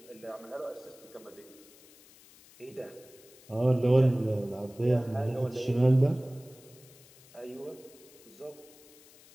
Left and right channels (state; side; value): noise; left; hiss, 24 dB below the sound